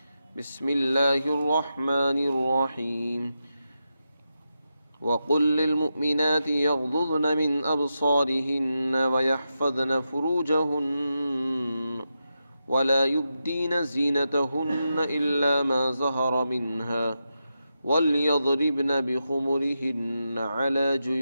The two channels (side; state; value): both; inverted; correlation -0.88